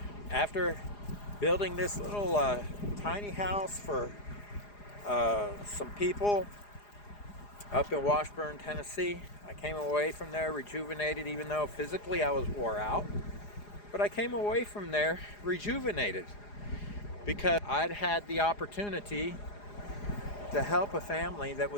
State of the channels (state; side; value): late; right; 4.9 ms